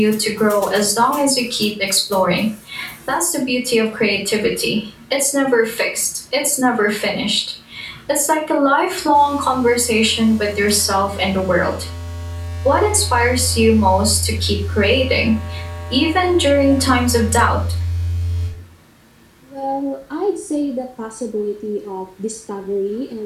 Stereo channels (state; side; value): identical; both; correlation 1.00